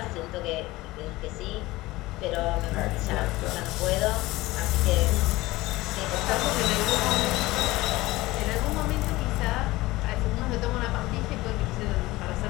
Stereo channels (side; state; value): right; quieter; 19.3 dB